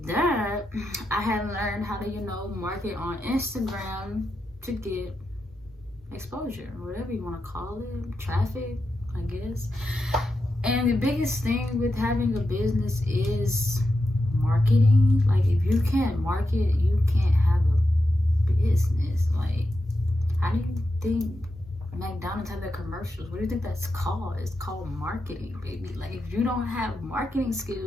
that, I had learned how to, you know, market on Instagram to get exposure, whatever you want to call it, traffic, I guess. And the biggest thing with having a business is marketing. Like, if you can't market, you can't have a business. Like, how do you think McDonald's have their commercials? What do you think that's called? It's called marketing, baby. Like, if you don't have marketing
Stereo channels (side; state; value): both; normal; correlation 0.88